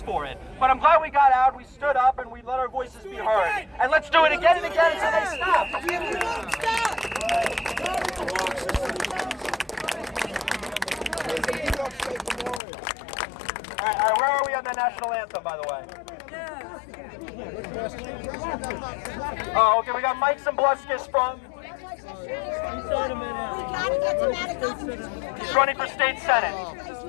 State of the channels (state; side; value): drops out; right; at 12.6 s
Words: for it. But I'm glad we got out, we stood up, and we let our voices be heard. And let's do it again and again until they stop. All right, where are we on the national anthem, by the way? Oh, okay, we got Mike Zambluskis from... He's running for state senate.